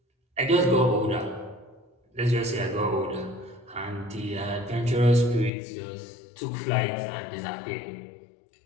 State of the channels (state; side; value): drops out; right; at 5.5 s